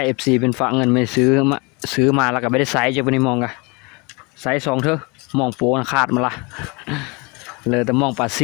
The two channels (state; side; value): quieter; right; 28.5 dB